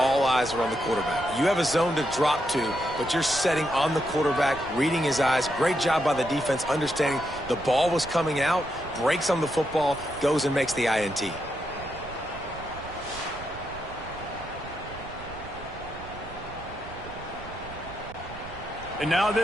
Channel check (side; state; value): right; noise; rumble, 15 dB below the sound